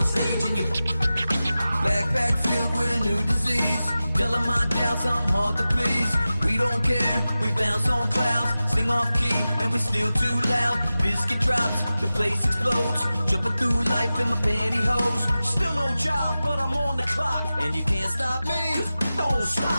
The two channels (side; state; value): both; inverted; correlation -0.95